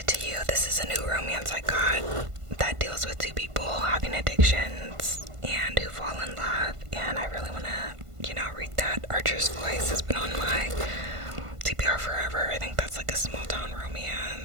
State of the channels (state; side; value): late; left; 1.5 ms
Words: is a new romance I got that deals with two people having addictions and who fall in love, and I really want to, read that. Archer's Voice has been on my TBR forever. I think that's like a small town